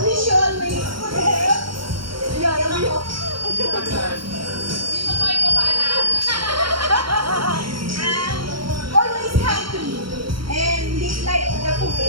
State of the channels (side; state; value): left; late; 0.74 ms